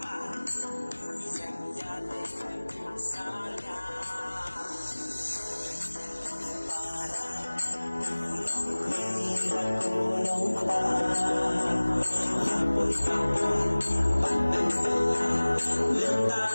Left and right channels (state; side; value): inverted; both; correlation -1.00